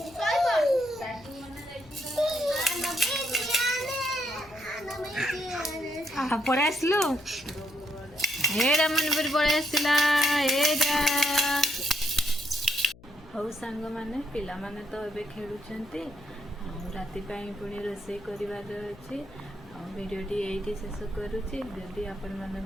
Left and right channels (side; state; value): left; noise; hum, 23 dB below the sound